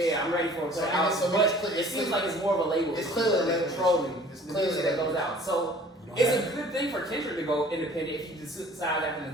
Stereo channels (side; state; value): both; normal; correlation 0.50